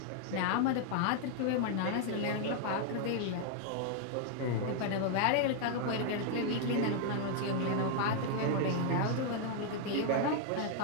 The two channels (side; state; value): both; different; correlation 0.00